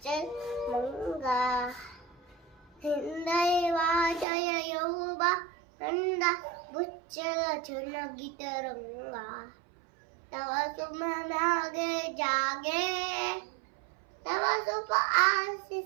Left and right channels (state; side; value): drops out; left; at 4.2 s